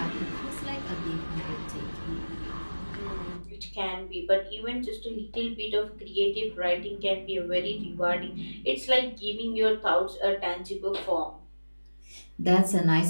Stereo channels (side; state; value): both; inverted; correlation -1.00